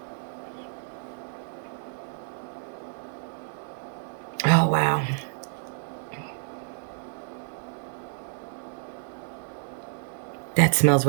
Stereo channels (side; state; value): left; silent; digital silence